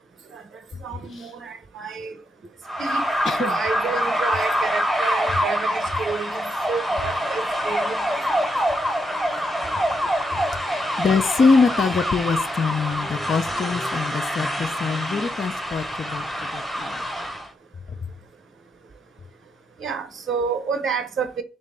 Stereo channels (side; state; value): both; normal; correlation 0.81